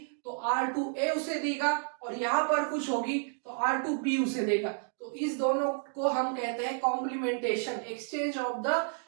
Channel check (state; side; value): silent; left; 57 dB below the other